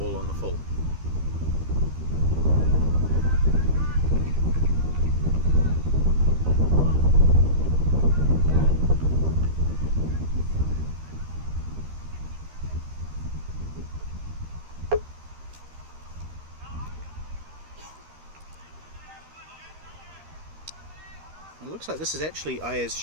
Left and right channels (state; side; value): late; left; 13 ms